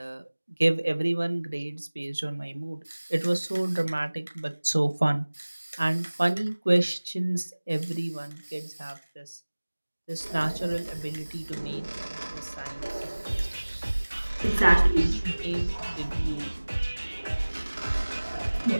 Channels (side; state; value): both; inverted; correlation -1.00